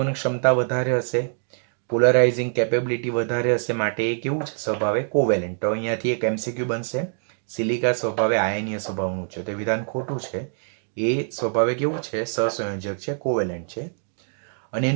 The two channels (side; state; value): left; silent; 62 dB below the other